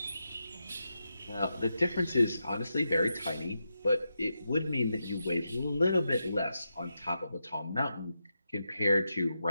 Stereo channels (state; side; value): inverted; both; correlation -0.87